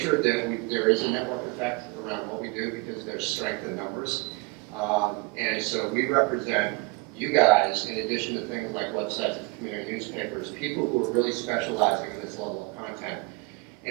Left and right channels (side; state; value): left; quieter; 26.8 dB